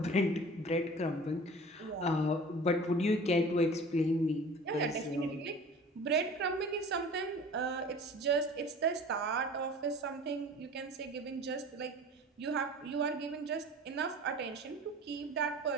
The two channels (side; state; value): both; normal; correlation 0.42